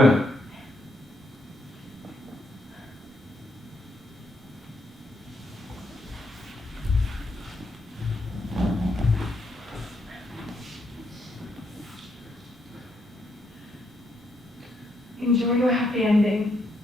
Enjoy your happy ending,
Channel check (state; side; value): normal; both; correlation 0.77